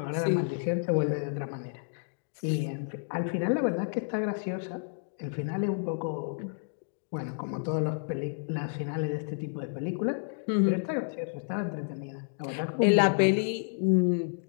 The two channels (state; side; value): silent; right; digital silence